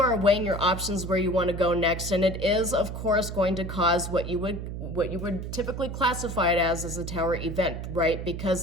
are weighing your options where you want to go next, and it is, of course, going to cause what you would typically classify it as a tower event, right?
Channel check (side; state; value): right; noise; hum, 6 dB below the sound